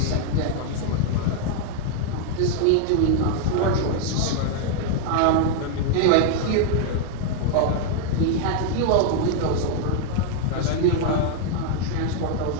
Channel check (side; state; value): both; different; correlation 0.00